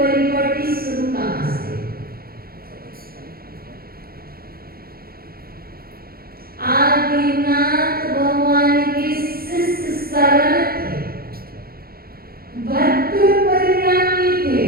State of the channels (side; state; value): left; late; 0.44 ms